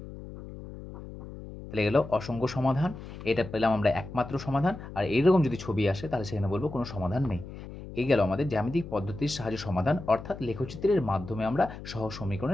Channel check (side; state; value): left; noise; hum, 12 dB below the sound